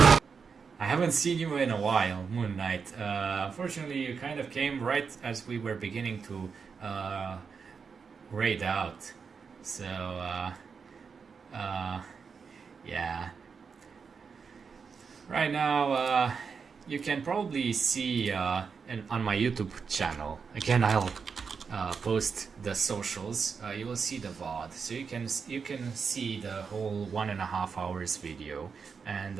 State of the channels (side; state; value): left; quieter; 5.7 dB